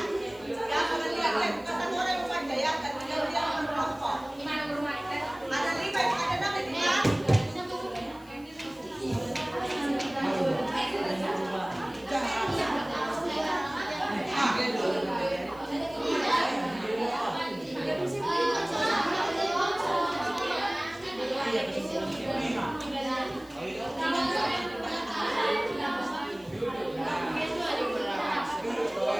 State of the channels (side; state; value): left; noise; hiss, 26 dB below the sound